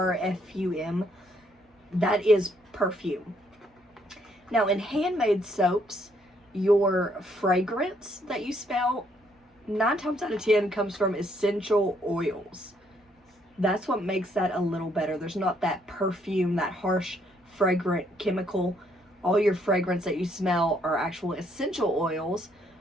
that is perfume. Now in handmade soaps, your fragrance that you smell 9 times out of 10 comes from essential oils. That's what makes that a little better. There's not that perfume, that harsh fragrant chemical. All your fragrance that you smell are actual essential oils,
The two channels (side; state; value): both; normal; correlation 0.70